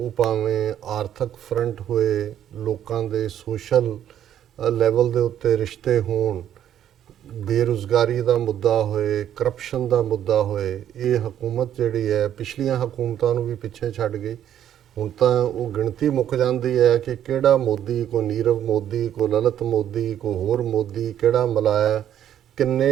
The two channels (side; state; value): left; quieter; 10.5 dB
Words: ਭਾਵੇਂ ਆਰਥਿਕ ਫਰੰਟ ਹੋਏ, ਲੋਕਾਂ ਦੇ ਸੋਸ਼ਲ ਲੈਵਲ ਦੇ ਉੱਤੇ ਰਿਸ਼ਤੇ ਹੋਣ, ਬੇਰੁਜ਼ਗਾਰੀ ਦਾ ਮੁੱਦਾ ਹੋਏ, ਕਰਪਸ਼ਨ ਦਾ ਮੁੱਦਾ ਹੋਏ, ਇਹ ਹਕੂਮਤ ਜਿਹੜੀ ਹੈ ਪਿਛਲੀਆਂ ਹਕੂਮਤਾਂ ਨੂੰ ਵੀ ਪਿੱਛੇ ਛੱਡ ਗਈ। ਹੁਣ ਤਾਂ ਉਹ ਗਿਣਤੀ ਮੁੱਕ ਜਾਂਦੀ ਹੈ ਕਿ ਕਿਹੜਾ ਮੋਦੀ, ਕੋ ਨੀਰਵ ਮੋਦੀ, ਕੋ ਲਲਿਤ ਮੋਦੀ, ਕੋ ਹੋਰ ਮੋਦੀ, ਕਿਹੜਾ ਮਲਾਇਆ,